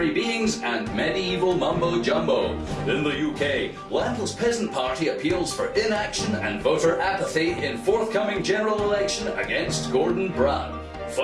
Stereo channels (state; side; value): identical; both; correlation 1.00